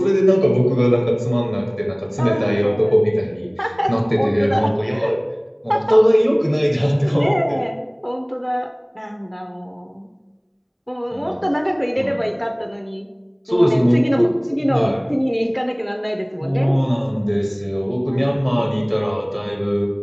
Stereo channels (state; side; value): identical; both; correlation 1.00